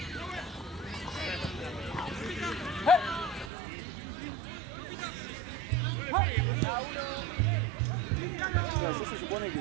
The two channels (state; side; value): drops out; left; at 3.5 s